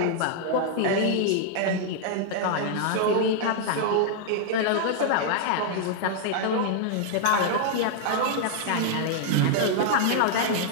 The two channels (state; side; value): different; both; correlation 0.00